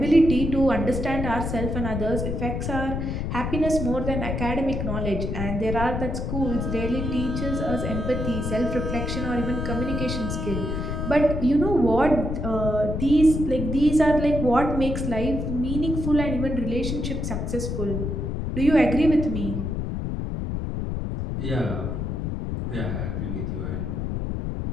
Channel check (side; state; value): left; noise; rumble, 2 dB below the sound